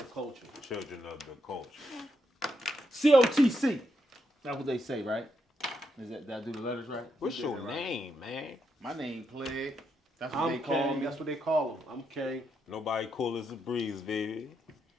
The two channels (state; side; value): normal; both; correlation 0.80